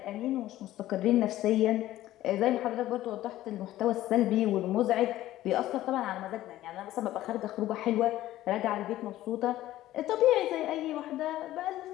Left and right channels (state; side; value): quieter; right; 14.6 dB